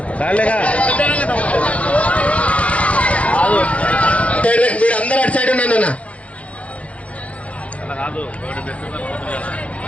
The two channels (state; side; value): late; right; 0.064 ms